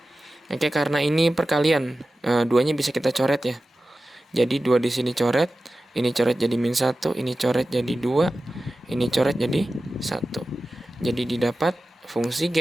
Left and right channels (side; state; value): both; normal; correlation 0.94